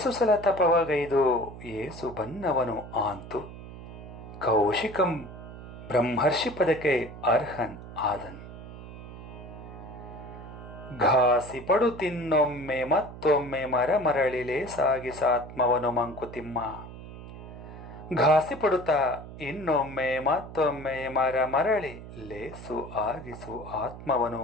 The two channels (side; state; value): right; noise; hum, 13 dB below the sound